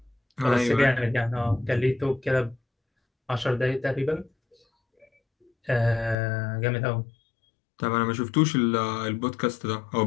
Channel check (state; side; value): drops out; right; at 6.2 s